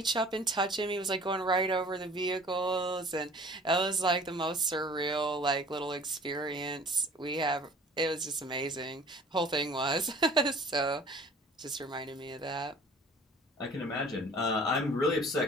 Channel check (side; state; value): both; normal; correlation 0.49